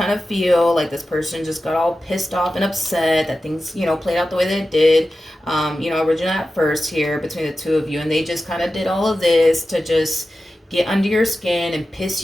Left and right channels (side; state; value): both; normal; correlation 0.93